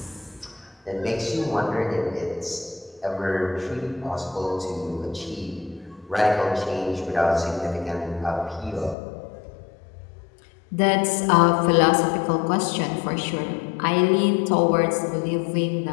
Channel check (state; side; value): drops out; right; at 9.0 s